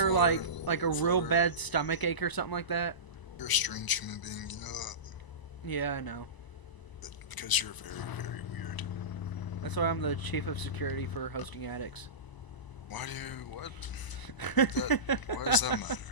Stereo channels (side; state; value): right; late; 1.0 ms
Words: like a real bad stomach ache or something like that. You're a strange human being, you know that? Yeah, I know. Because you're very, very weird. That's why I'm the chief of security for hosting addicts. Why do you, what? Why does that matter?